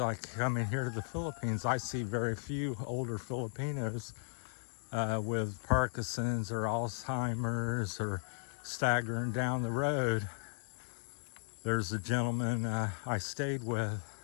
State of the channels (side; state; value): right; silent; digital silence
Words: coming here to the Philippines, I see very few older Filipinos with Parkinson's or Alzheimer's or staggering down the road. There's a gentleman I stayed with